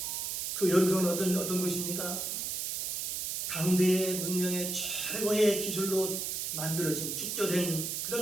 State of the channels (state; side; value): noise; right; hiss, 2 dB below the sound